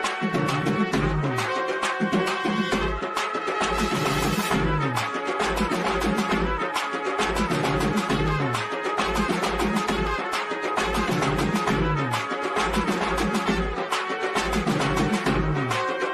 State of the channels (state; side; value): identical; both; correlation 1.00